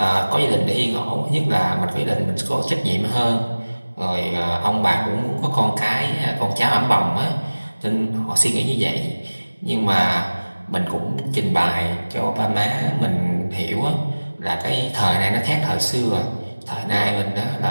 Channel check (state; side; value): inverted; both; correlation -1.00